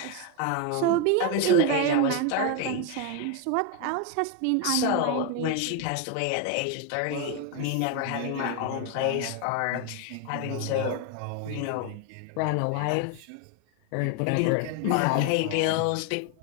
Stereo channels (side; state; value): both; different; correlation 0.01